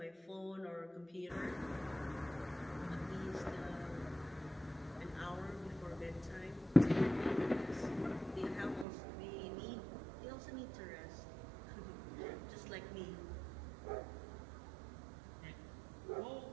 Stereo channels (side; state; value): left; drops out; at 8.8 s